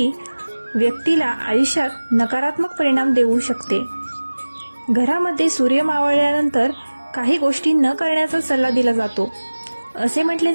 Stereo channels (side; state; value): both; inverted; correlation -1.00